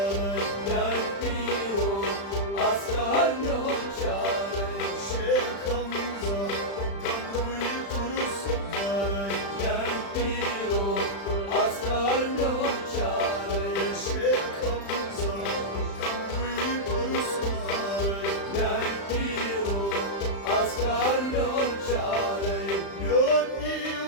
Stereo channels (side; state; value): right; late; 35 ms